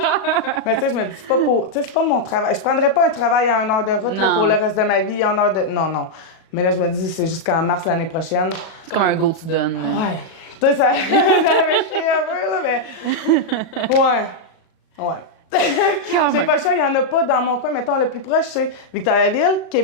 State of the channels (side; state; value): right; late; 37 ms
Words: Mais tu sais, je me dis, c'est pas pour... Tu sais, c'est pas mon travail. Je prendrais pas un travail à 1 heure de route là, Non. pour le reste de ma vie, 1 heure de... Non. Mais là, je me dis, c'est jusqu'en mars l'année prochaine. C'est comme un go tu donnes. là. Ouais. Tu sais, ça avait chié un peu, là, mais... Ouais. J'ai pas le choix, il y en a pas dans mon coin. Mettons, le plus proche, c'est Victoriaville,